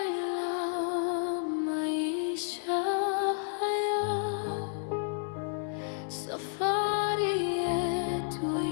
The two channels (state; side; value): silent; right; 57 dB below the other